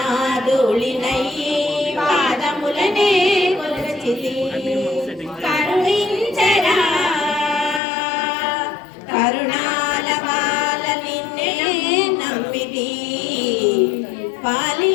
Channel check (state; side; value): drops out; right; at 7.8 s